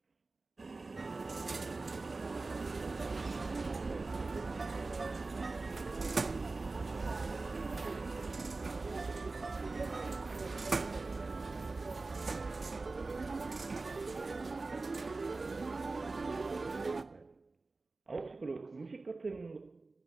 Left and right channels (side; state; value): left; quieter; 3.6 dB